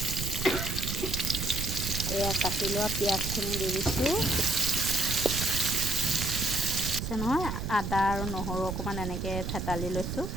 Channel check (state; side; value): noise; right; rumble, 4 dB below the sound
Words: এয়া কাটি লোৱা পিঁয়াজখিনি দি দিছোঁ। নহয়, আদা আৰু নহৰু অকণমান এনেকৈ থেতালি লৈছোঁ।